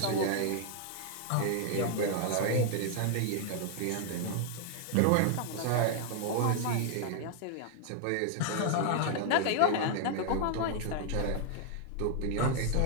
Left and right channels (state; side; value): different; both; correlation 0.00